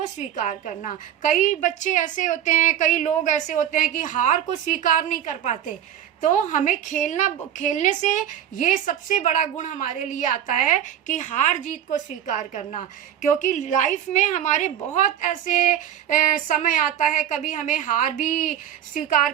स्वीकार करना। कई लोग ऐसे होते हैं कि हार को स्वीकार नहीं कर पाते। तो हमें खेलने से ये सबसे बड़ा गुण हमारे लिए आता है कि हार जीत को स्वीकार करना। क्योंकि लाइफ में हमारे बहुत ऐसे समय आता है, कभी हमें हार भी स्वीकार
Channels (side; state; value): left; quieter; 10.2 dB